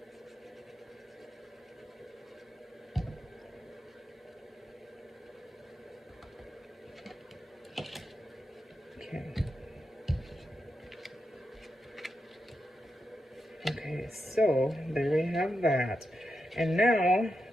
Okay, so there we have that. And now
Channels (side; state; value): both; normal; correlation 0.87